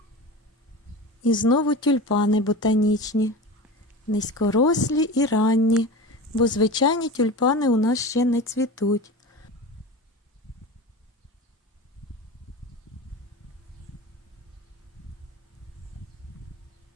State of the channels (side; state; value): both; normal; correlation 0.30